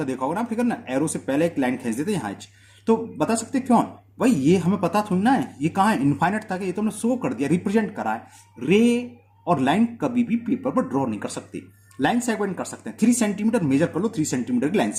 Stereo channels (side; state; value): both; identical; correlation 1.00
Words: देखा होगा ना फिगर ना, एरो से पहले एक लाइन खींच देते यहाँ एच, तो बता सकते क्यों भाई, ये हमें पता थोड़ी ना है ये कहाँ है, इनफाइनाइट तक है, ये तो हमने शो कर दिया, रिप्रेजेंट करा है। रे और लाइन कभी भी पेपर पर ड्रॉ नहीं कर सकते, लाइन सेगमेंट कर सकते हैं। 3 सेंटीमीटर मेजर कर लो, 3 सेंटीमीटर की लाइन